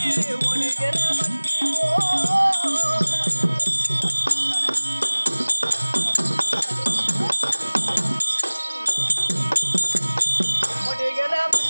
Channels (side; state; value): both; inverted; correlation -1.00